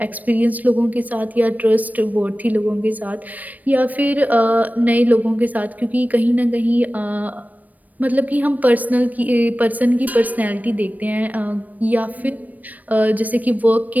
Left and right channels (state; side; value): late; left; 0.079 ms